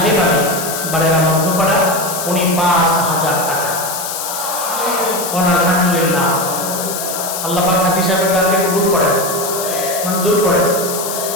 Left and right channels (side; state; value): left; noise; hiss, 5 dB below the sound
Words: আলী বাড়েরা মধ্যপাড়া, উনি 5,000 টাকা। আলহামদুলিল্লাহ, আল্লাহ পাক হাজী সাহেবের দানকে কবুল করেন, মঞ্জুর করেন,